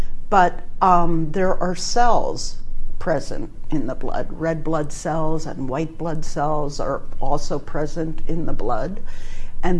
but there are cells present in the blood. Red blood cells and white blood cells are also present in the blood,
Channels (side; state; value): both; identical; correlation 1.00